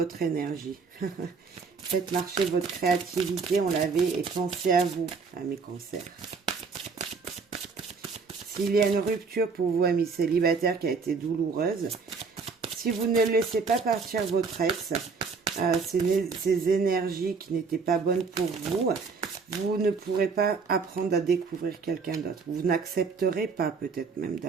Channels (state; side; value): quieter; left; 5.0 dB